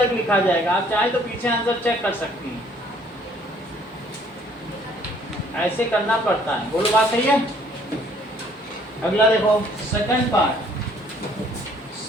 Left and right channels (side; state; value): both; normal; correlation 0.60